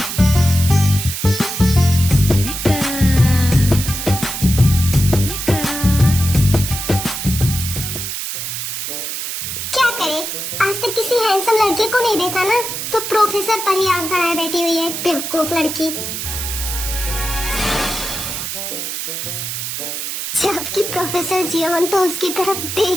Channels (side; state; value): right; noise; hiss, 5 dB below the sound